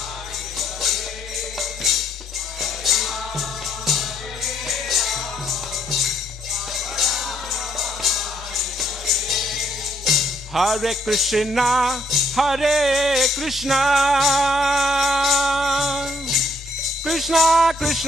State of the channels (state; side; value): normal; both; correlation 0.69